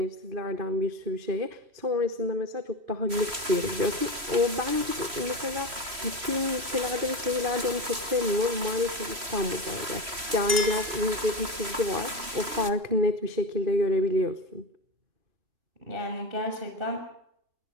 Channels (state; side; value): late; left; 3.1 ms